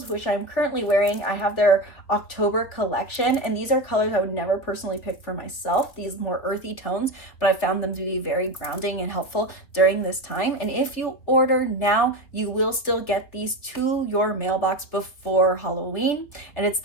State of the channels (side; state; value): right; late; 3.6 ms